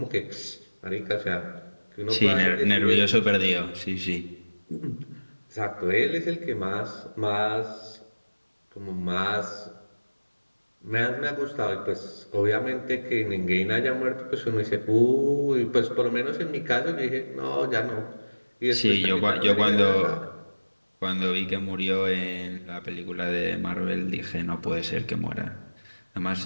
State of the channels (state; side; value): inverted; both; correlation -1.00